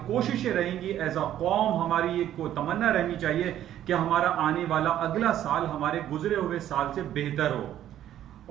कोशिशें रहेंगी एज अ कौम। हमारी ये को तमन्ना रहनी चाहिए कि हमारा आने वाला अगला साल हमारे गुजरे हुए साल से बेहतर हो।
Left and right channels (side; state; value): left; quieter; 11.7 dB